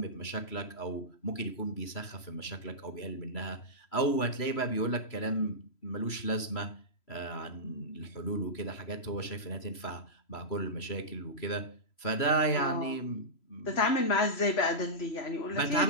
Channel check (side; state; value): right; late; 3.0 ms